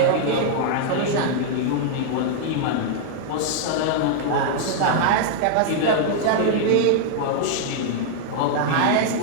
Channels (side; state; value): both; different; correlation -0.01